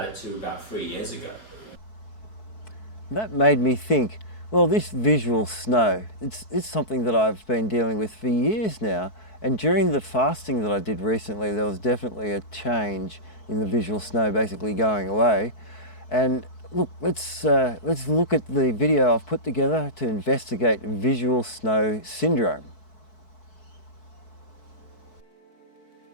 it till about 3 years ago. That made me think, well, this visual snow, it's something that I've been dealing with for years now. And during the fasting that I did recently, there was definitely a change in the visual snow basically going away. And look, let's look at the video I've put together to investigate visual snow syndrome.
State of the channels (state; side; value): late; right; 4.6 ms